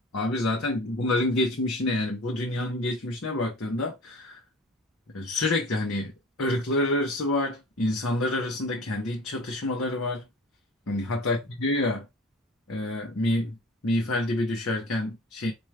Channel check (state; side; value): normal; both; correlation 0.42